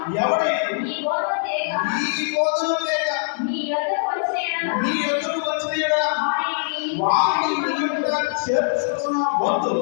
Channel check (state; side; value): silent; right; 64 dB below the other